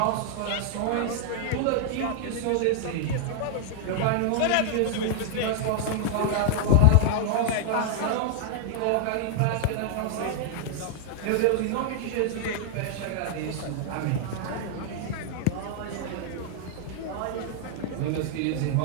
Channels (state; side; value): different; both; correlation -0.01